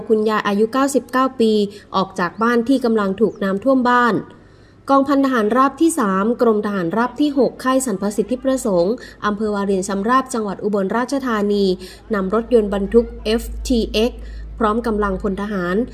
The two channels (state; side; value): identical; both; correlation 1.00